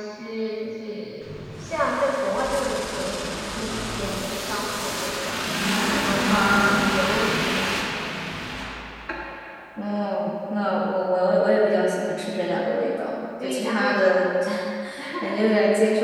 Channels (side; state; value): both; identical; correlation 1.00